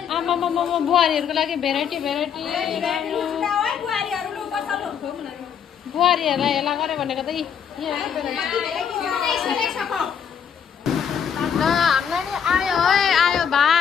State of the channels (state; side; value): quieter; right; 7.8 dB